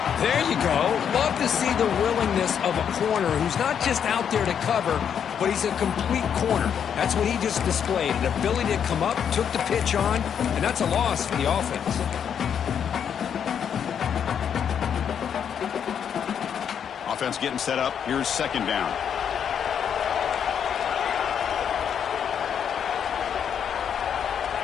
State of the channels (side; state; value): right; quieter; 8.1 dB